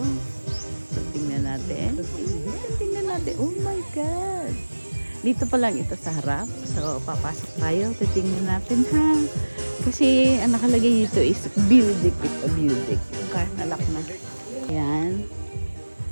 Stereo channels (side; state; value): both; inverted; correlation -1.00